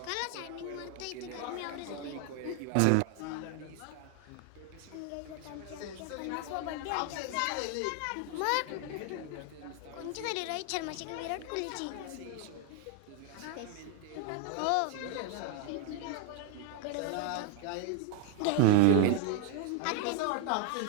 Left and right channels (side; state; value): both; different; correlation 0.01